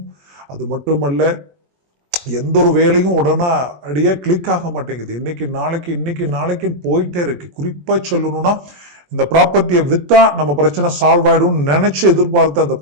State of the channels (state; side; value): late; left; 21 ms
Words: அது மட்டுமல்ல எந்த ஒரு வேலையும் உடனே அடியே கிளிக் ஆக மாட்டேங்குது. இன்னைக்கு நாளைக்கு போயிட்டே இருக்கு. குறிப்பா சொல்லணும்னா இந்த ப்ராப்பர்ட்டியை வித்தா நம்ம பிரச்சனை சால்வ் ஆயிடும் நினைச்சு எதிர்பார்த்த அந்த